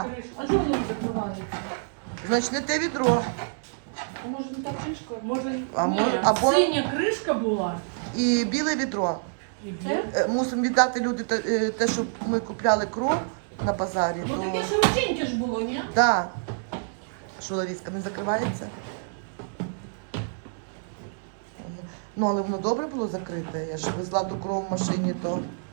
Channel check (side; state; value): left; silent; 60 dB below the other